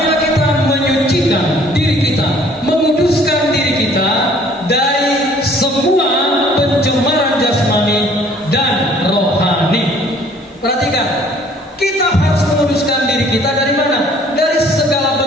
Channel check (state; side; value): normal; both; correlation 0.56